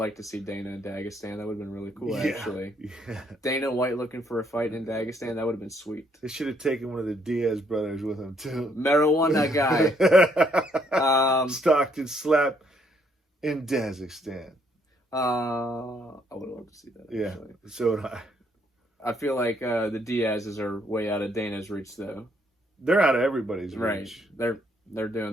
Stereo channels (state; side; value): normal; both; correlation 0.70